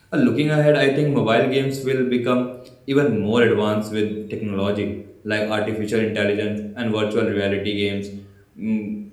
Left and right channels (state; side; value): identical; both; correlation 1.00